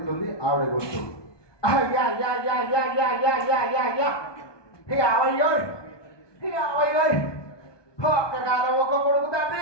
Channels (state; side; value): late; right; 1.2 ms